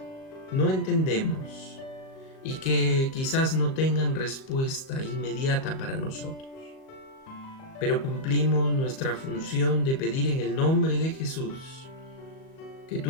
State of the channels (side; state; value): right; late; 37 ms